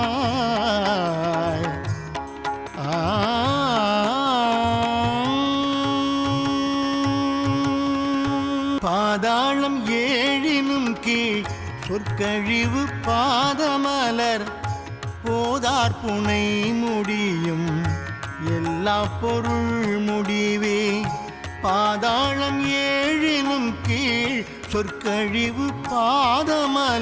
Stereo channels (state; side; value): identical; both; correlation 1.00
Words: பாதாளம் ஏழினும் கீழ் சொற்கழிவு பாதமலர் போதார் புனை முடியும் எல்லா பொருள் முடிவே பாதாளம் ஏழினும் கீழ் சொற்கழிவு